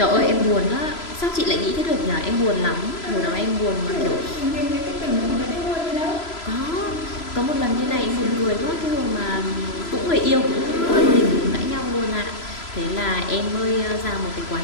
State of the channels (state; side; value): late; right; 3.0 ms